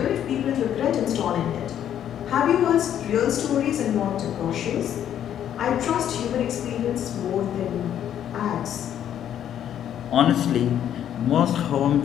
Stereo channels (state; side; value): quieter; right; 10.2 dB